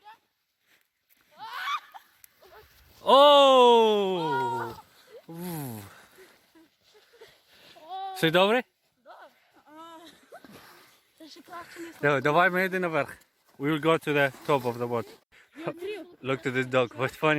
Oh! Все добре? Давай ми йдемо наверх. We will go to the top of the boat. Look to this dog. What's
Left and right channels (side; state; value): both; identical; correlation 1.00